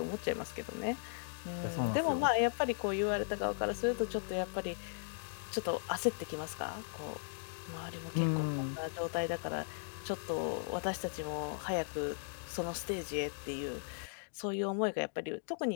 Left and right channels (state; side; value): silent; right; digital silence